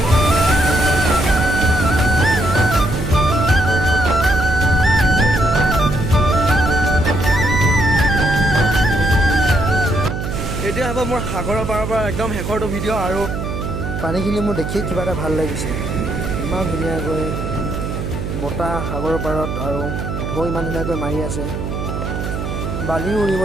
এতিয়া হ'ব মোৰ সাগৰৰ পাৰৰ পৰা একদম শেষৰটো ভিডিঅ' আৰু পানীখিনি মোৰ দেখি কিবা এটা ভাল লাগিছে ইমান ধুনীয়াকৈ বতাহ সাগৰৰ পাৰত আৰু ঢৌ ইমান ধুনীয়াকৈ মাৰি আছে বালিও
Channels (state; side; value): noise; right; hum, 4 dB below the sound